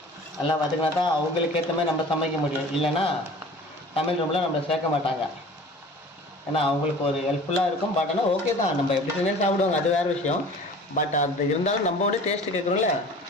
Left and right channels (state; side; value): normal; both; correlation 0.43